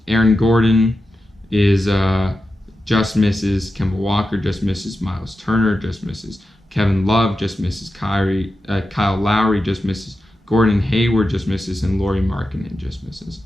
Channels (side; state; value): both; normal; correlation 0.90